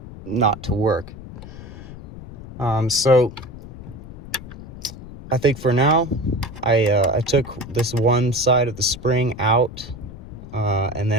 to work. So I think for now, I took this one side of the spring out, and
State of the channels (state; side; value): noise; left; rumble, 14 dB below the sound